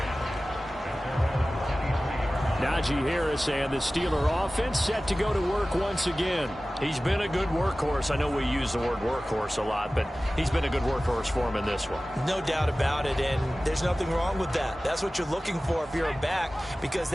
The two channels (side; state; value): both; normal; correlation 0.97